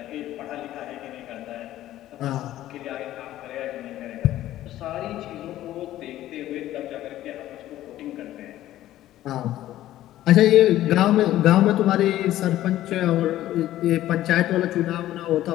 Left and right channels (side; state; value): right; quieter; 13.9 dB